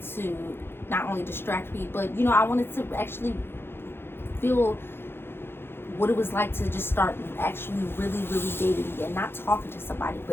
to not only distract me, but, I wanted to actually feel what it was like to just start actually really, really dating again. Not talking to somebody,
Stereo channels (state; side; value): late; right; 0.11 ms